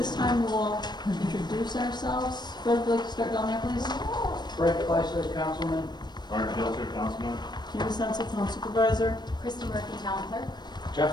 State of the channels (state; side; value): late; right; 0.21 ms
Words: time we'll all introduce ourselves. Fred, would you like to start down there, please? Fred Fleischer, Councilman. Byron, Councilman. Mattison, Town Supervisor. Christy Murphy, Town Clerk.